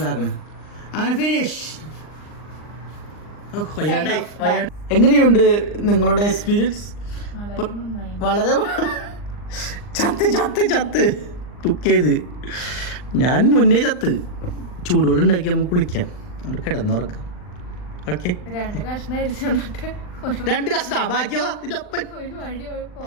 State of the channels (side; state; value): right; late; 39 ms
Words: അങ്ങനെ ഫിനിഷ്. എങ്ങനെയുണ്ട് നിങ്ങളുടെ എക്സ്പീരിയൻസ്? വളരെ ചത്ത് കുക്ക് ചെയ്ത് ഞാൻ മുന്നേ ചത്ത്. ചൂടുവെള്ളം ഉണ്ടാക്കി നമുക്ക് കുളിക്കാം. അവിടെ കിടന്നുറക്കാം. ഓക്കെ 2 കഷ്ണം അരിച്ചിട്ട് 2 കഷ്ടാ ബാക്കിയോ ഒരു വഴി